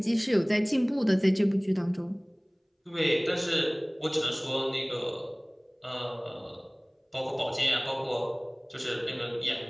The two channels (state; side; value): identical; both; correlation 1.00